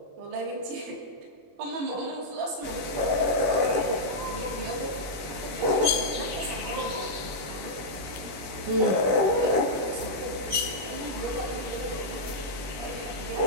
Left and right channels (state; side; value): late; left; 20 ms